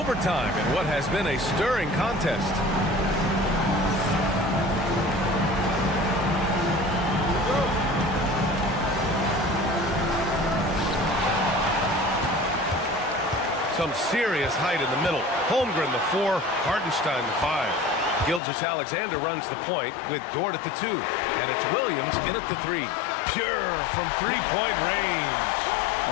in what has been a stirring contest. Some serious height in the middle. Holmgren the 4, Hartenstein the 5. Gilgeous-Alexander runs the point with Dort at the 2. And it's Williams in at the 3. Pure from three-point range.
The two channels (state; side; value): drops out; right; at 18.4 s